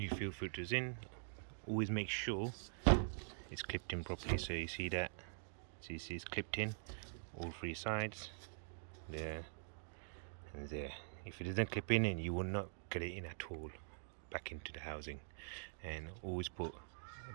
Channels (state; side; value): silent; left; digital silence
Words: fuel filter's in. Always make sure it's clipped in properly. So you see that. So you see it's clipped in, all 3 sides, there and there. If it doesn't clip in, you will not get it in at all back into the housing. And always put a